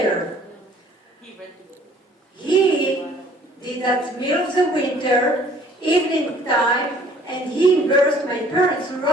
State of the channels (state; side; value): normal; both; correlation 0.56